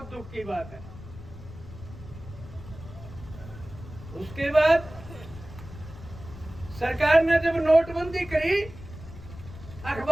दुख की बात है। उसके बाद सरकार ने जब नोटबंदी करी,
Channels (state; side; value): noise; left; rumble, 15 dB below the sound